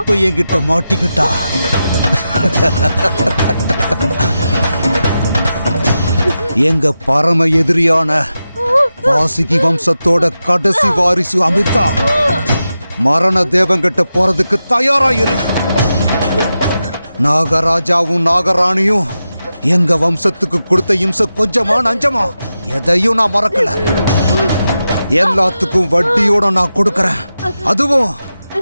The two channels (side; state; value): both; inverted; correlation -0.90